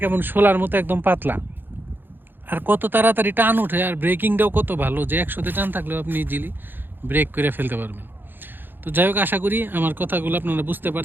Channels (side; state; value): left; late; 0.097 ms